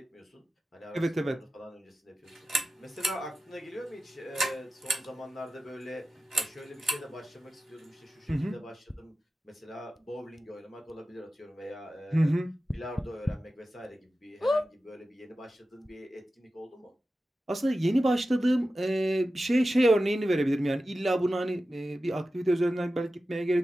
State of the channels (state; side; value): normal; both; correlation 0.94